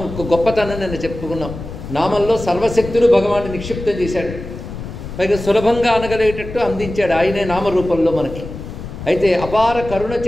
ఒక గొప్పతనం నేను చెప్పుకున్నాం. నామంలో సర్వశక్తులు భగవాన్ని నిక్షిప్తం చేశాడు. పైగా సులభంగా అనగలిగేటట్టు అందించాడు ఆయనే నామరూపంలో మనకి. అయితే అపార కరుణ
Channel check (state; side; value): noise; left; rumble, 10 dB below the sound